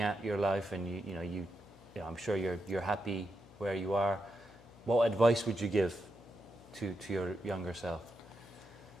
at your life and I'm sure you're happy where you are. What advice would you give to your younger self?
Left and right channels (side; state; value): left; noise; hum, 23 dB below the sound